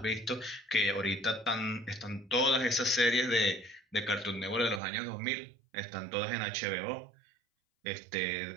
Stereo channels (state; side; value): drops out; left; at 4.8 s